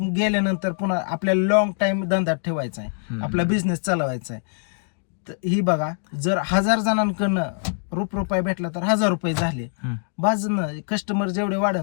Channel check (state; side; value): silent; right; 63 dB below the other